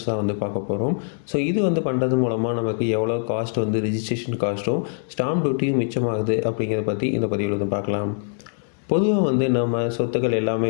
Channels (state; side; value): silent; right; 63 dB below the other